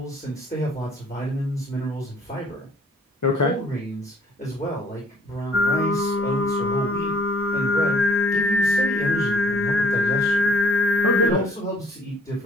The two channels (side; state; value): both; normal; correlation 0.59